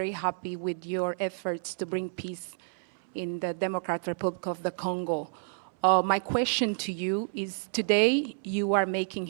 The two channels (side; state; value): left; silent; 58 dB below the other